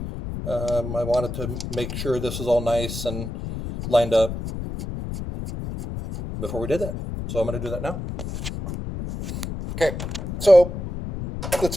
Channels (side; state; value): left; noise; rumble, 6 dB below the sound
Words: I wanted to make sure this is all nice and lined up before we did that. So I'm going to do that now. Okay, so let's